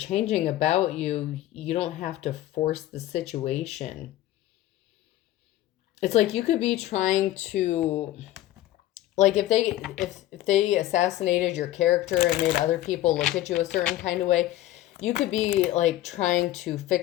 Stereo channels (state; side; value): quieter; right; 14.5 dB